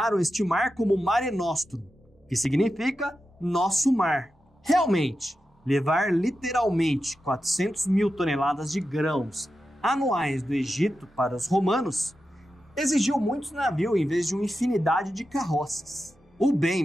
este mar como Mare Nostrum, que significa nosso mar. Realmente, levar literalmente 400 mil toneladas de grãos anuais do Egito para os romanos exigiu muitos navios em vez de uma infinidade de carroças. O bem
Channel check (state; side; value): normal; both; correlation 0.90